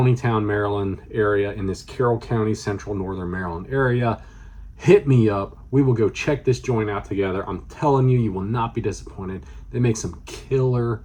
Maryland area, in this Carroll County, central northern Maryland area, hit me up. We will go check this joint out together. I'm telling you, you will not be disappointed. They make some killer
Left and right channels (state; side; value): identical; both; correlation 1.00